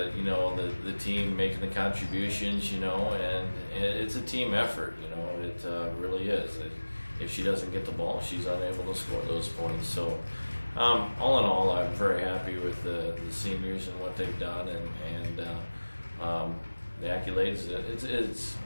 the team making the contributions, and it's a team effort. It really is. If she doesn't get the ball, she's unable to score those points. So all in all, I'm very happy with the seniors and what they've done, and the accolades. It's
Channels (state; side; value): inverted; both; correlation -1.00